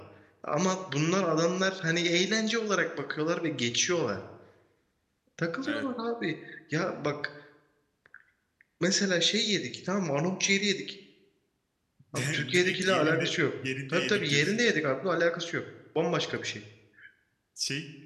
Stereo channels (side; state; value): both; identical; correlation 1.00